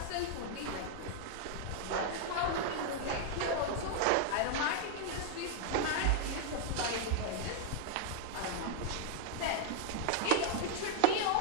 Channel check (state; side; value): different; both; correlation 0.00